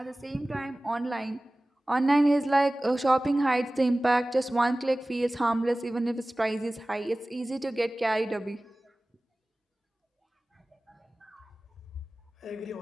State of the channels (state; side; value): normal; both; correlation 0.98